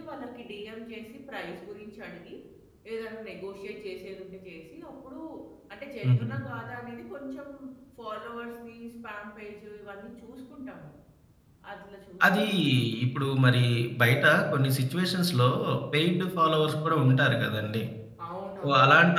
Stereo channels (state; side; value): identical; both; correlation 1.00